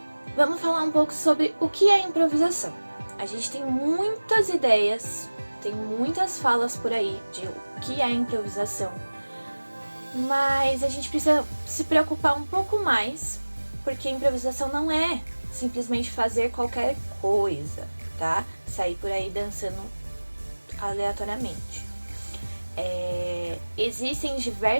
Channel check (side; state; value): both; inverted; correlation -1.00